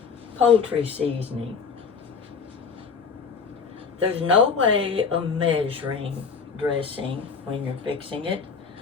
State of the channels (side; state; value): right; quieter; 5.6 dB